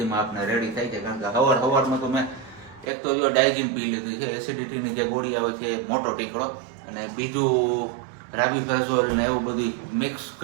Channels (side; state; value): left; drops out; at 2.9 s